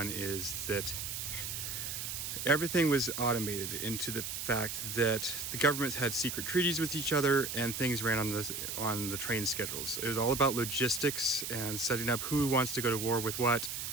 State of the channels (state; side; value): noise; right; hiss, 4 dB below the sound